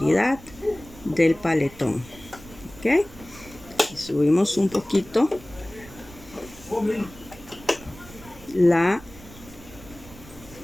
del paletón. ¿Ok? Y subimos un poquito la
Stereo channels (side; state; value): right; noise; rumble, 19 dB below the sound